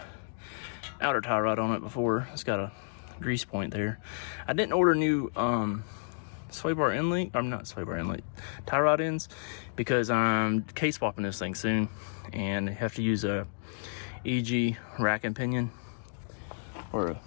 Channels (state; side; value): silent; right; digital silence